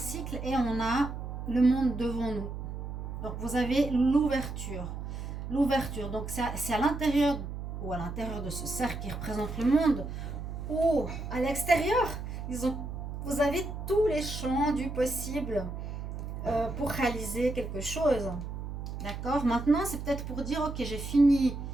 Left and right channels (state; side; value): noise; right; hum, 7 dB below the sound